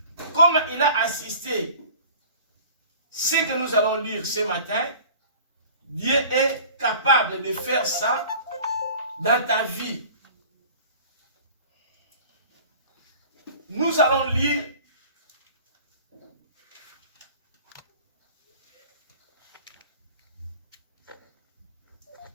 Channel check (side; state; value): both; inverted; correlation -0.44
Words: Comme il a assisté ce que nous allons lire ce matin, Dieu est capable de faire ça dans ta vie. Nous allons lire